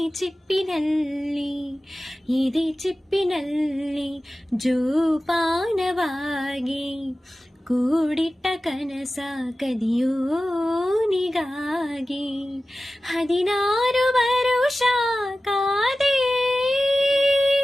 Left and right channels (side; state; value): both; normal; correlation 0.95